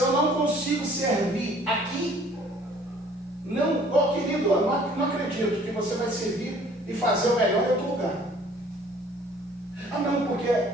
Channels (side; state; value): both; normal; correlation 0.54